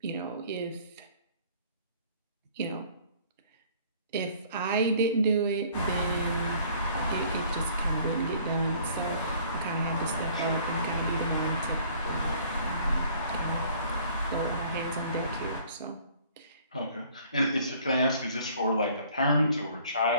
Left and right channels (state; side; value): inverted; both; correlation -0.56